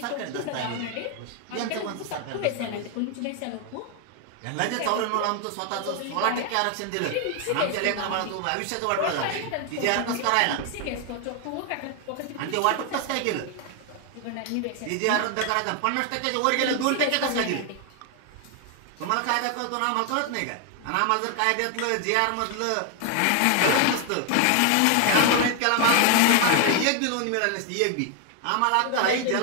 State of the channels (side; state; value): both; different; correlation 0.01